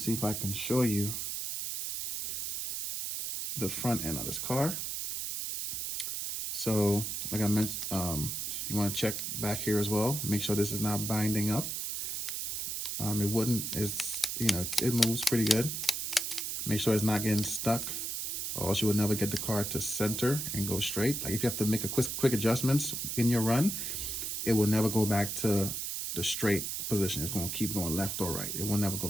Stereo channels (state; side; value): noise; right; hiss, 3 dB below the sound